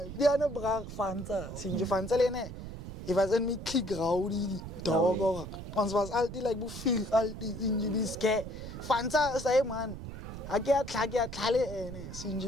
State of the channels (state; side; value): noise; right; rumble, 10 dB below the sound